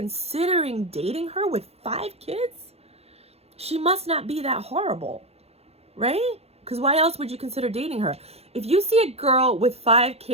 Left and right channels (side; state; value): left; late; 0.30 ms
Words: dating her with 5 kids, she must not be that horrible, right? Because why else would you consider dating her? If you see a girl with 5